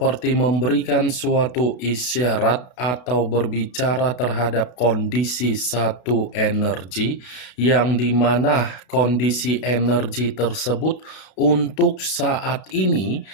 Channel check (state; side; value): late; right; 32 ms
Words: memberikan suatu isyarat atau berbicara terhadap kondisi satu energi, yang dimana kondisi energi tersebut untuk saat ini